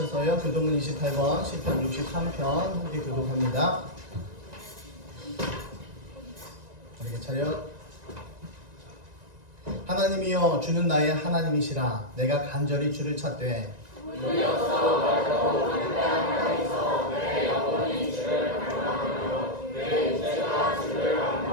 교독은 28번, 시편 63편 함께 교독합니다. 우리의 차렷. 하나님이여 주는 나의 하나님이시라. 내가 간절히 주를 찾되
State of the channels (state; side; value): late; left; 1.9 ms